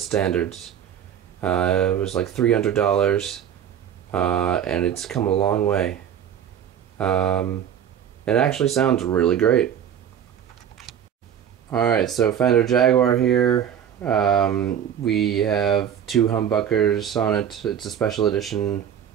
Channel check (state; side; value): quieter; left; 9.2 dB